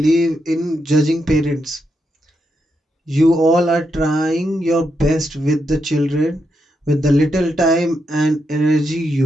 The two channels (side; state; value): both; normal; correlation 0.83